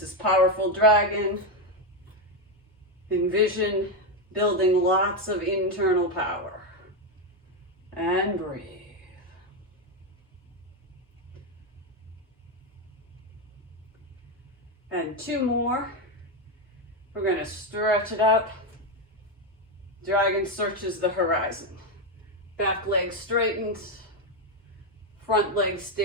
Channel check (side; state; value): both; normal; correlation 0.07